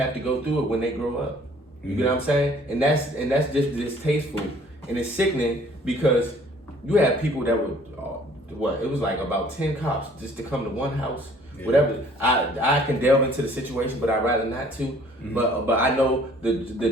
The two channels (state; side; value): normal; both; correlation 0.56